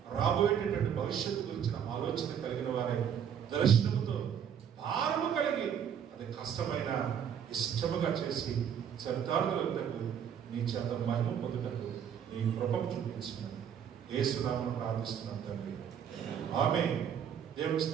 రాబోయేటటువంటి భవిష్యత్తు గురించిన ఆలోచన కలిగిన వారే దర్శనముతో భారము కలిగి అది కష్టమైన ఇష్టముగా చేసి చరితార్థులకు నీ చేత మహిమ పొందుటకు నీ కృపను చూపించినాను. యేసు నామమున ప్రార్థిస్తున్నాను తండ్రి, ఆమేన్. దేవుని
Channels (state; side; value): quieter; left; 8.5 dB